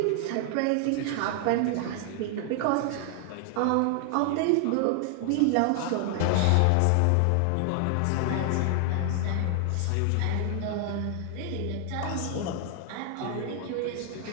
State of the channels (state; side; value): different; both; correlation 0.00